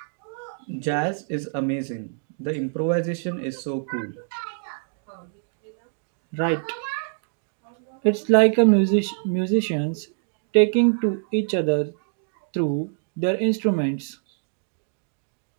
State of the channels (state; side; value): silent; left; digital silence